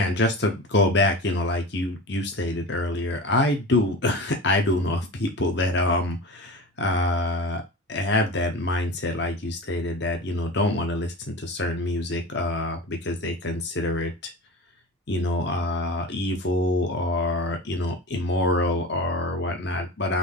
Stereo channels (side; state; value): both; normal; correlation 0.31